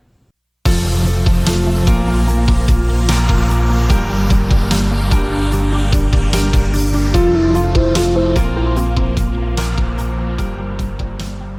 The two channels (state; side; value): identical; both; correlation 1.00